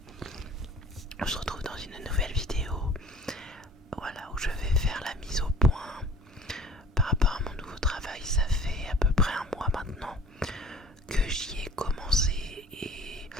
On se retrouve dans une nouvelle vidéo, voilà, où je vais faire la mise au point par rapport à mon nouveau travail. Ça fait à peu près un mois maintenant que j'y ai commencé et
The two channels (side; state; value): both; normal; correlation 0.48